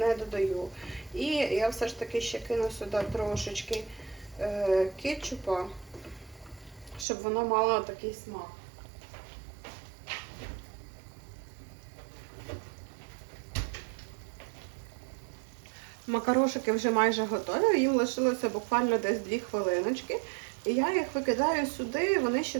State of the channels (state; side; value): drops out; left; at 7.1 s